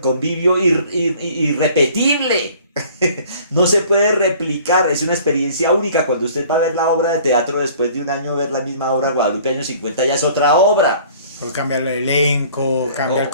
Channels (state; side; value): inverted; both; correlation -0.52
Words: irrepetible. No se puede replicar, es una experiencia única. Cuando usted va a ver la obra de teatro después de un año ver la misma obra, Guadalupe año 50 ya es otra obra. Pues cambia el elenco, cambia el